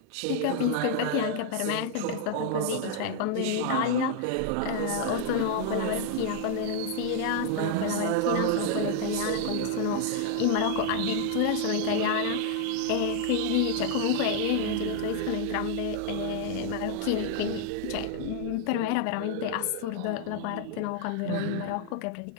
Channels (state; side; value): different; both; correlation 0.00